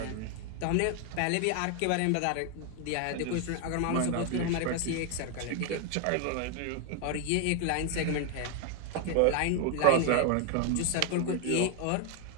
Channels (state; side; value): different; both; correlation 0.00